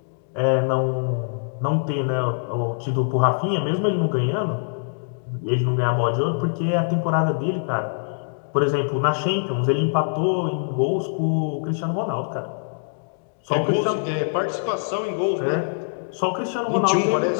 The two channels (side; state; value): right; silent; digital silence